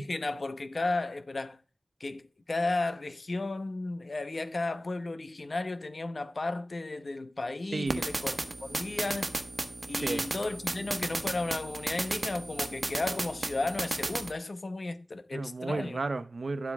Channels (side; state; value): both; normal; correlation 0.96